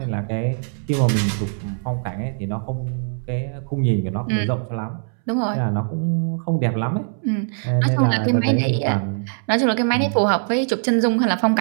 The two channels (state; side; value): silent; left; 64 dB below the other